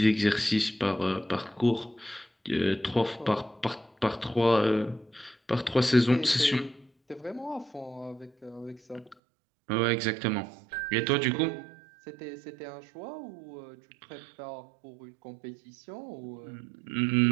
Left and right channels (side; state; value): left; drops out; at 9.2 s